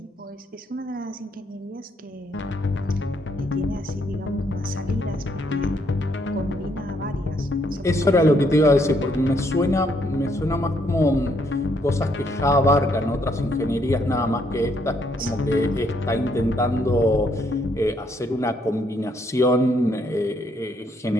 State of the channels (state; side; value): normal; both; correlation 0.71